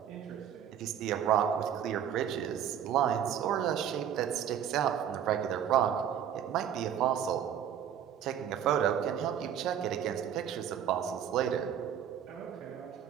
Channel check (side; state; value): left; quieter; 9.3 dB